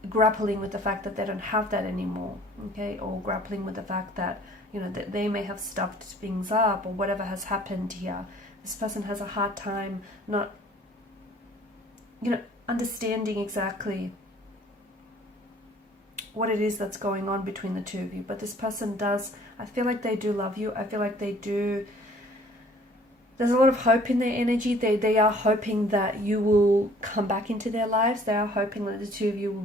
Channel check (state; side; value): normal; both; correlation 0.54